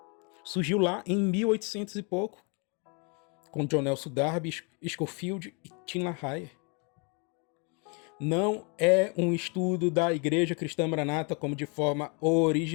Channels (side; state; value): right; quieter; 34.3 dB